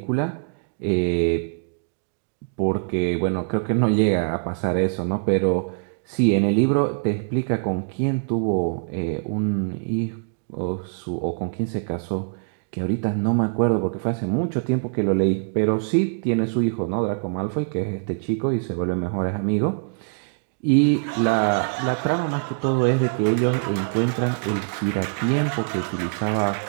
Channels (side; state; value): left; silent; digital silence